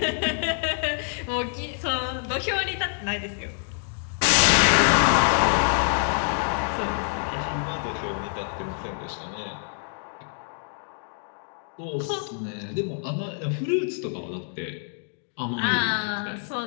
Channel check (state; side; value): silent; right; 61 dB below the other